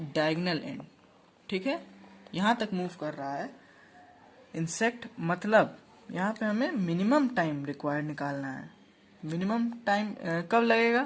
डायगोनल एंड, ठीक है, यहां तक मूव कर रहा है इंसेक्ट। मतलब यहाँ पे हमें मिनिमम टाइम रिक्वायर्ड निकालना है। मिनिमम टाइम कब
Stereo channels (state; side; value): identical; both; correlation 1.00